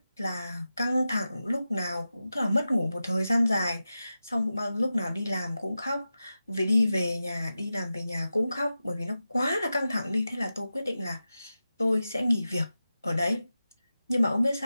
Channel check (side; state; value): both; inverted; correlation -0.93